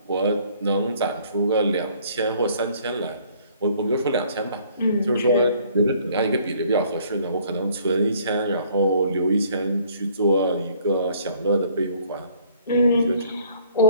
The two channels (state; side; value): inverted; both; correlation -0.59